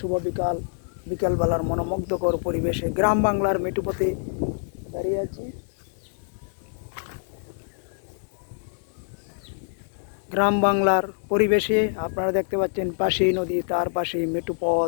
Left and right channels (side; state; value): right; silent; digital silence